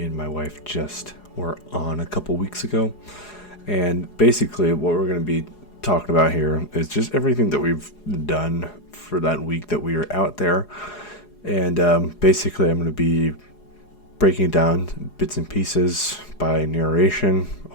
and my wife just were on a couple weeks ago. And basically what we're going to be talking about here is just everything that we've done for that week that we were out there. And basically I'm going to be breaking down bits and pieces by narration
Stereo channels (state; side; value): late; right; 4.8 ms